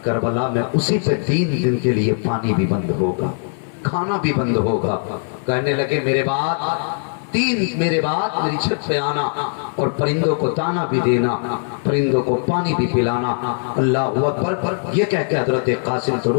کربلا میں اسی پہ 3 دن کے لیے پانی بھی بند ہوگا، کھانا بھی بند ہوگا۔ کہنے لگے میرے بعد میری چھت پہ آنا، اور پرندوں کو دانا بھی دینا، پرندوں کو پانی بھی پلانا۔ اللہ اکبر، یہ کہہ کے حضرت قاسم تو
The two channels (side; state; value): right; silent; digital silence